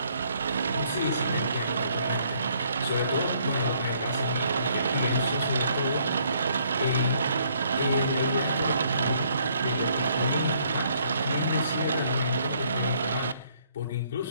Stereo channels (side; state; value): both; inverted; correlation -0.66